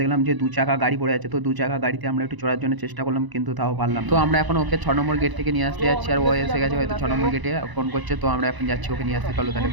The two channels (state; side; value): late; left; 1.0 ms